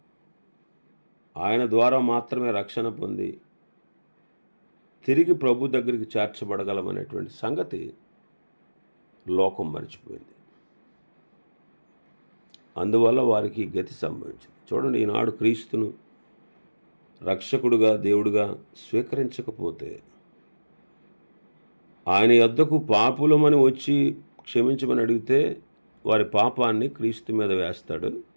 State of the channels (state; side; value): inverted; both; correlation -1.00